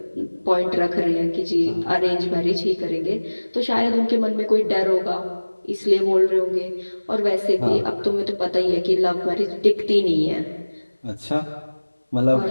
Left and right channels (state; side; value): inverted; both; correlation -1.00